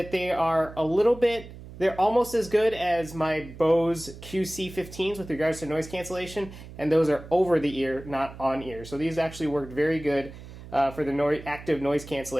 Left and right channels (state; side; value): noise; right; hum, 15 dB below the sound